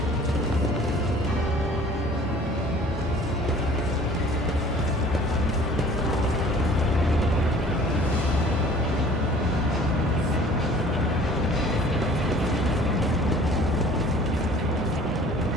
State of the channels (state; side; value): normal; both; correlation 0.50